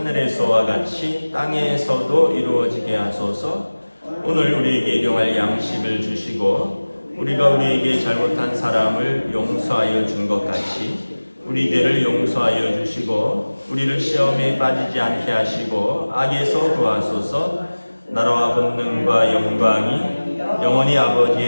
같이 땅에서도 이루어지게 하소서. 오늘 우리에게 일용할 양식을 주시고 우리가 우리에게 잘못한 사람을 용서하여 준 것 같이 우리 죄를 용서하여 주시고 우리를 시험에 빠지지 않게 하시고 악에서 구하소서. 나라와 권능과 영광이 영원히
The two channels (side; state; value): both; inverted; correlation -1.00